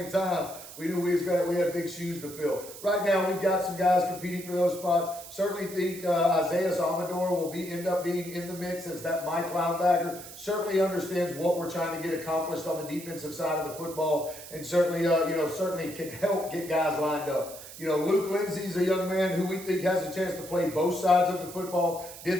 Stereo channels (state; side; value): noise; right; hiss, 14 dB below the sound